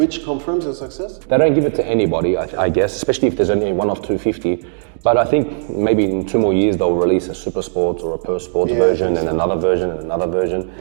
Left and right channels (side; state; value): left; silent; 68 dB below the other